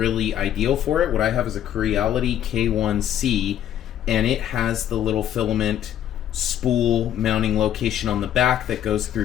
ideal for it. What I have is a Creality K1C, and it has the little filament spool mounting location on the back that goes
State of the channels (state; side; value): quieter; right; 10.8 dB